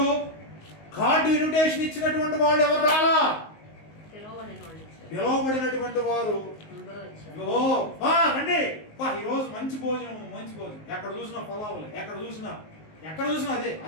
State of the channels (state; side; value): late; right; 19 ms